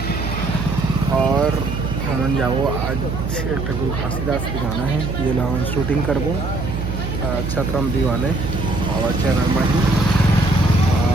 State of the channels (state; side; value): noise; right; hum, 4 dB below the sound